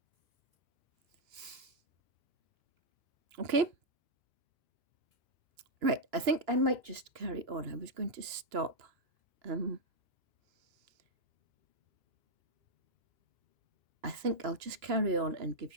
Okay? Right, I think I might just carry on. I was going to stop. I think I'll just carry on and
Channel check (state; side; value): late; left; 2.9 ms